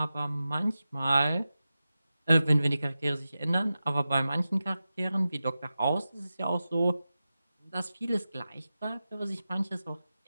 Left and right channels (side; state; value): both; inverted; correlation -0.93